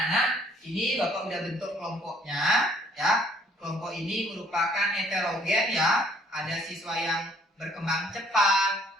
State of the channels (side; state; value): both; normal; correlation 0.61